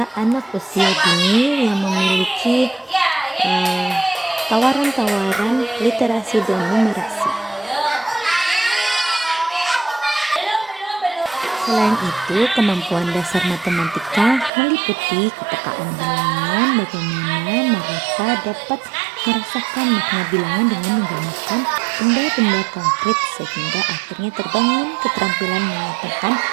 anak usia dini yang memiliki tawaran-tawaran literasi dan numerasi. Selain itu, kemampuan dasar matematika meliputi kepekaan bilangan, bagaimana mereka dapat merasakan makna bilangan dengan menggunakan benda-benda konkret sehingga akhirnya terbangun keterampilan menyatakan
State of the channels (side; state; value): left; drops out; at 14.5 s